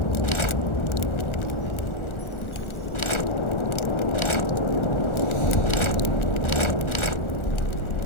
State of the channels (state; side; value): late; right; 1.4 ms